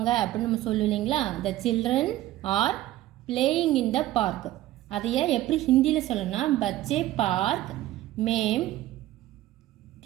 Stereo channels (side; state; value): left; quieter; 15.0 dB